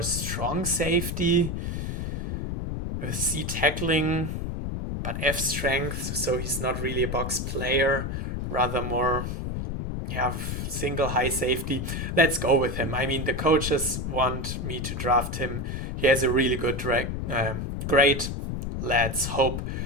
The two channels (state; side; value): noise; left; rumble, 3 dB below the sound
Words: strong safety with C tackling, but F strength, so he's not really a box player, rather more single high safety. Let's go with him. I mean, the coaches want me to draft him. He has a really good grade. Let's hope